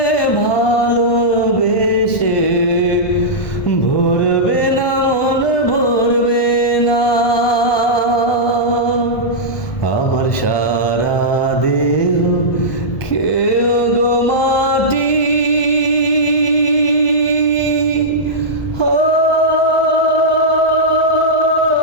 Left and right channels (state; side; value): late; right; 1.2 ms